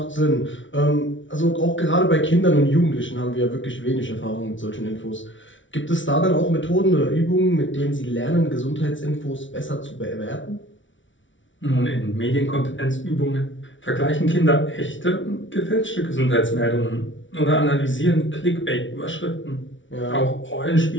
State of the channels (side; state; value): right; late; 0.56 ms